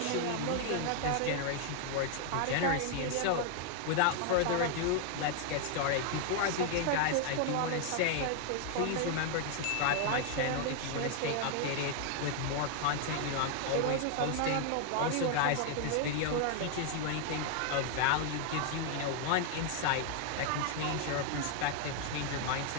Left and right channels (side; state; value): both; different; correlation 0.00